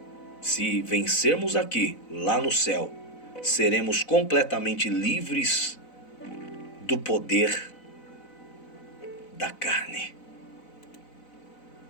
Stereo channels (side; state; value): right; late; 4.0 ms